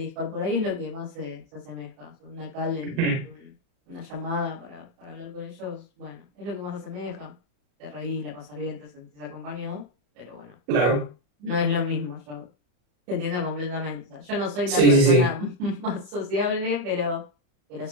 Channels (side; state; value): left; late; 34 ms